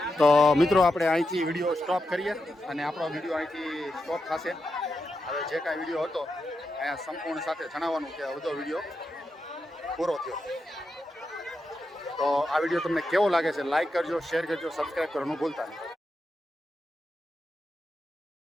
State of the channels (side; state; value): both; normal; correlation 0.87